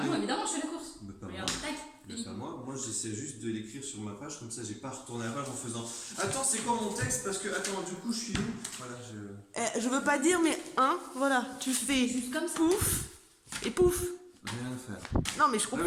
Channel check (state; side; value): identical; both; correlation 1.00